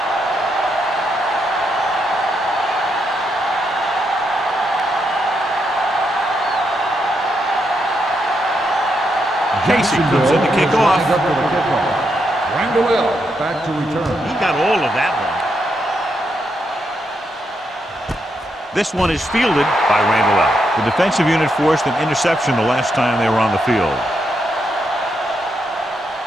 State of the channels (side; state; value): both; normal; correlation 0.81